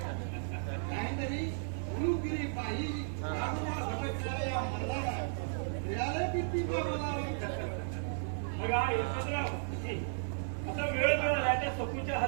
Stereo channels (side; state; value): left; silent; digital silence